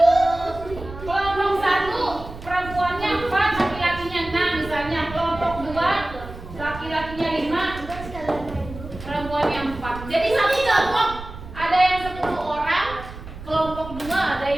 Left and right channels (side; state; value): right; noise; rumble, 13 dB below the sound